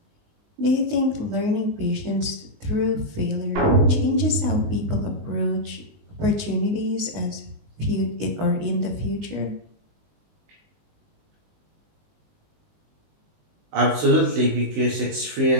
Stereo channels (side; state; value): left; late; 19 ms